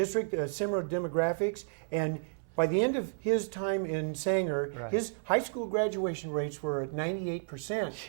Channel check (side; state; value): left; silent; 56 dB below the other